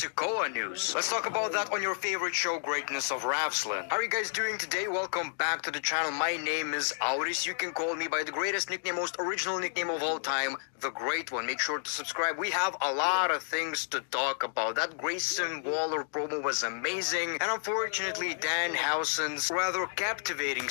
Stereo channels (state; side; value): silent; right; digital silence